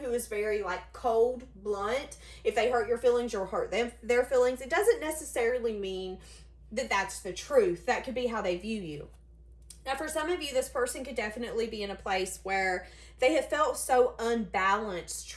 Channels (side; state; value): both; identical; correlation 1.00